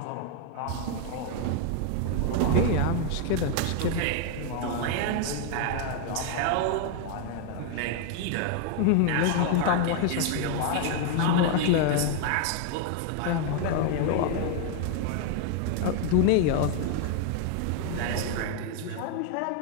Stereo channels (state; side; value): different; both; correlation 0.00